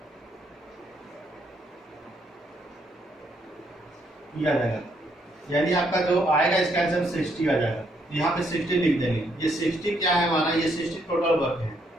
आ जाएगा, यानी आपका जो आएगा इसका आंसर 60 आ जाएगा। यहाँ पे 60 लिख देंगे। ये 60 क्या है हमारा, ये 60 टोटल वर्क है।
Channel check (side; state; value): both; normal; correlation 0.72